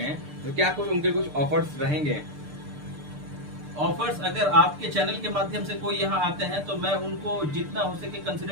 तो क्या कुछ उनके कुछ ऑफर्स रहेंगे? ऑफर्स अगर आपके चैनल के माध्यम से कोई यहाँ आते हैं तो मैं उनको जितना हो सके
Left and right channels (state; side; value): late; left; 6.7 ms